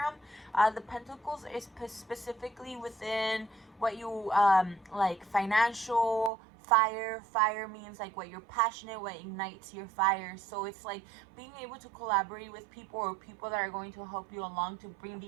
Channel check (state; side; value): drops out; left; at 6.3 s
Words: The Pentacles is specifically within what you like financial. Fire means like what you're passionate, what ignites your fire. So it's like being able to collaborate with people, or people that are going to help you along to bring